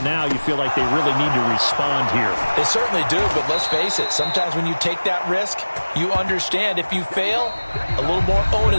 now you feel like they really need to respond here. They certainly do, but let's face it. Sometimes when you take that risk, you understand if you fail, a little more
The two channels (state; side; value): inverted; both; correlation -1.00